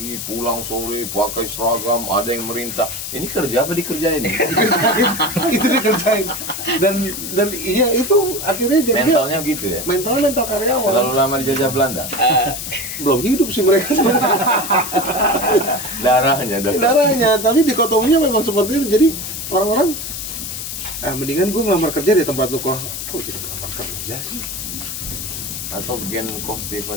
pulang sore, pakai seragam, ada yang merintah. Ini kerja apa dikerjain? Itu dikerjain. Dan iya itu akhirnya jadi Mentalnya gitu ya. mental karyawan. Terlalu lama dijajah Belanda. Belum hidup sih mereka sebenarnya. Darahnya, tapi dikotominya memang seperti itu. Jadi orang-orang mendingan gue ngelamar kerja di tempat lu. Kok jadi ngelamar kerja sih? Atau gen Coach Stephen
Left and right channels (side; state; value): left; noise; hiss, 6 dB below the sound